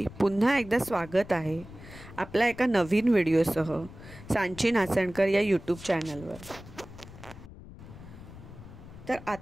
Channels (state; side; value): noise; left; rumble, 16 dB below the sound